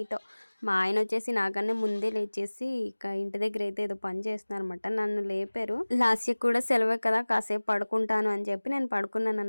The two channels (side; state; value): both; inverted; correlation -1.00